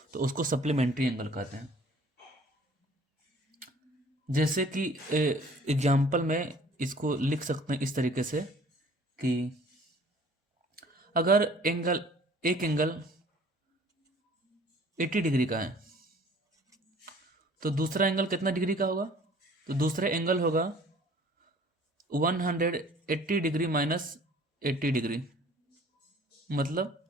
तो उसको सप्लीमेंट्री एंगल कहते हैं। जैसे कि एग्जाम्पल में इसको लिख सकते हैं इस तरीके से कि अगर एक एंगल 80 डिग्री का है तो दूसरा एंगल कितना डिग्री का होगा? तो दूसरा एंगल होगा 180 डिग्री माइनस 80 डिग्री,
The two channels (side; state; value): both; normal; correlation 0.52